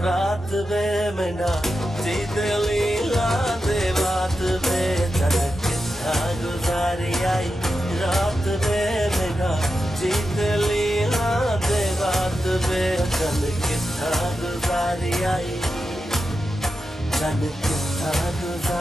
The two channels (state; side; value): normal; both; correlation 0.90